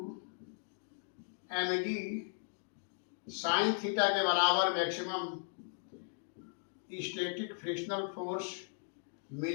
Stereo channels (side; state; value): right; silent; digital silence